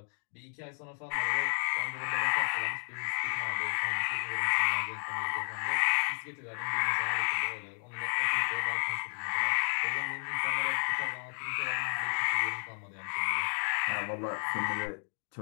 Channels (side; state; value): right; silent; 56 dB below the other